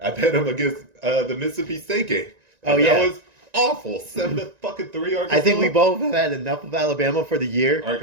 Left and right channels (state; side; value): late; left; 1.9 ms